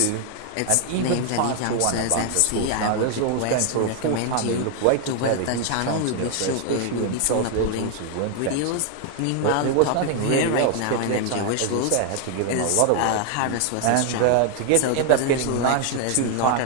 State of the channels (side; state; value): both; different; correlation 0.00